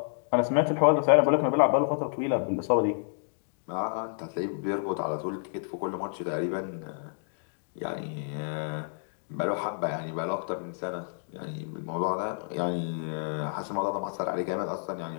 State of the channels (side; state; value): right; silent; digital silence